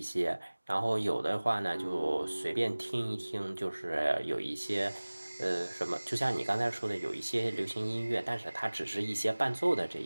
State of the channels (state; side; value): inverted; both; correlation -1.00